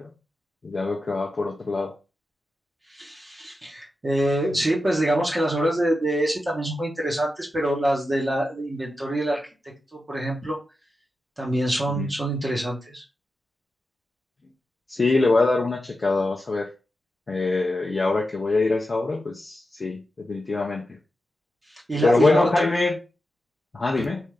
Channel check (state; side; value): normal; both; correlation 0.90